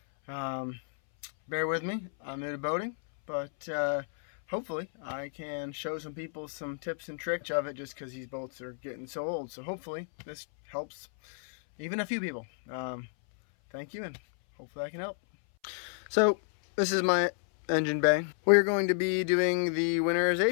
Bear with me, I'm new to boating, but hopefully I can show some people some tips and tricks of it just because these boats are getting so old. So hopefully this helps even a few people. Thank you, and hopefully I can help. So this is my engine bay. We're going to be doing the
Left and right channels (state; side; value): silent; right; 57 dB below the other